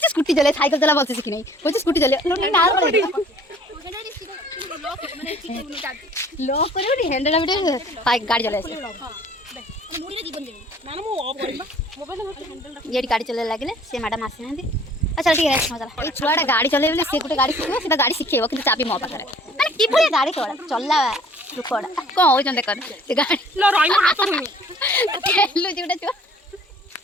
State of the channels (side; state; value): both; normal; correlation 0.54